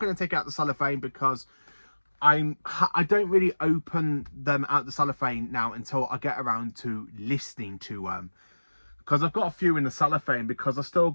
to take out the cellophane, because I don't really open them out the cellophane now until I get around to listening to them, because I've got a few in the cellophane, because I've still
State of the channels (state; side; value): inverted; both; correlation -1.00